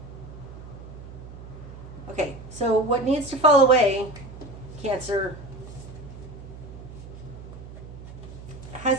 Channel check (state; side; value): noise; right; hum, 14 dB below the sound